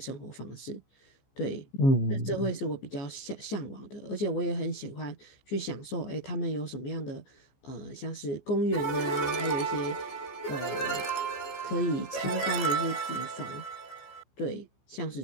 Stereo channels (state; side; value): late; right; 15 ms